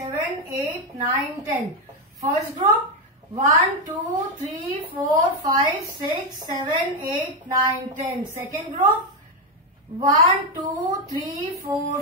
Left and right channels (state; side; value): normal; both; correlation 0.07